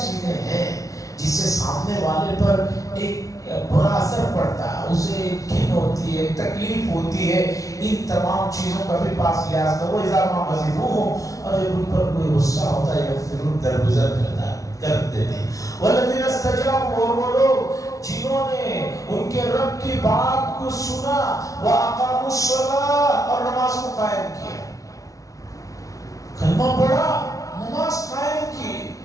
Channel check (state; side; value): late; right; 0.17 ms